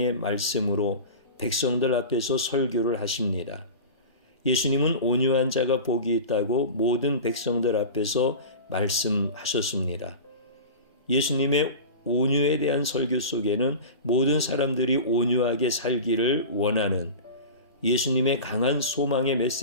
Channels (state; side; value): inverted; both; correlation -0.31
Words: 말씀으로 백성들 앞에서 설교를 하십니다. 예수님은 온유한 자가 복이 있다고 모든 백성들 앞에서 말씀하셨습니다. 예수님의 온유에 대한 설교 속에는 모든 사람들이 온유하게 살기를 원하는 예수님의 강한 소망의